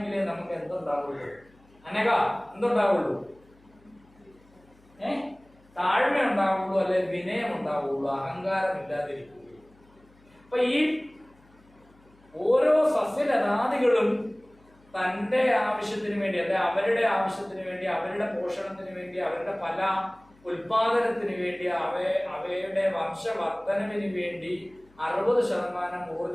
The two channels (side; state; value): left; noise; hum, 30 dB below the sound